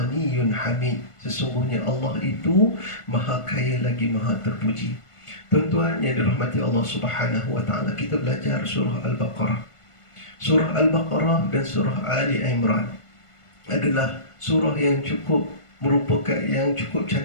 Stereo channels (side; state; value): right; late; 1.5 ms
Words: hamid, sesungguhnya Allah itu maha kaya lagi maha terpuji. Tuan-tuan yang dirahmati Allah Subhanahu wa ta'ala, kita belajar surah Al-Baqarah. Surah Al-Baqarah dan surah Ali Imran adalah surah yang cukup